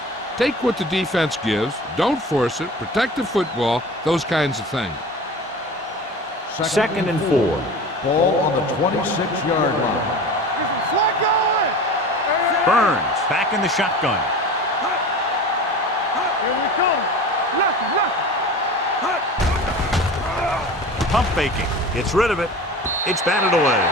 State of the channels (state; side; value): normal; both; correlation 0.36